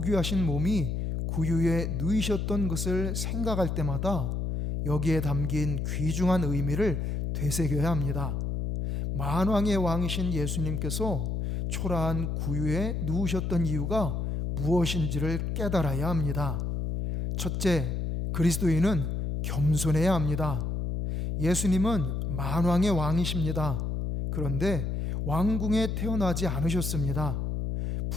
몸이 구유에 누이셨던 것을 생각할 때마다 여기에 담긴 귀중한 의미를 되새겨야 합니다. 만왕의 왕이신 예수님께서 초라한 구유에 누우셨던 이유가 무엇인지를 깨달아야 합니다. 첫째, 그리스도인은 겸손해야 합니다. 예수님은 만왕의 왕이십니다. 그런데 왕궁에 태어나지 않으셨습니다.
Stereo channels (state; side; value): noise; left; hum, 1 dB below the sound